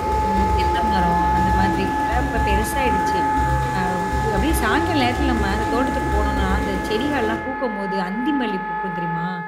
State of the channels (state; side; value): identical; both; correlation 1.00